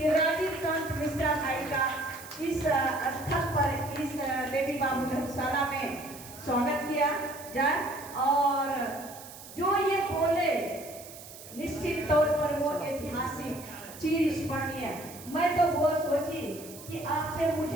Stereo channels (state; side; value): noise; right; hiss, 16 dB below the sound